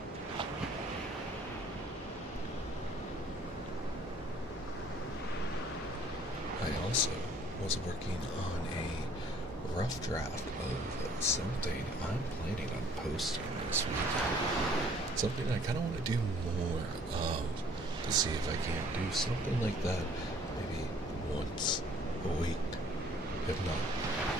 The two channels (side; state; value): both; normal; correlation 0.57